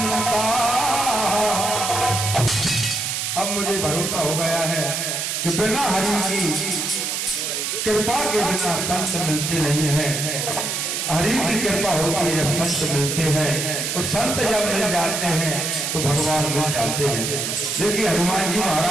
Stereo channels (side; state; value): right; noise; hiss, 2 dB below the sound